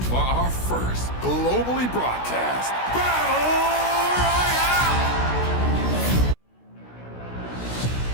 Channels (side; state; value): right; late; 16 ms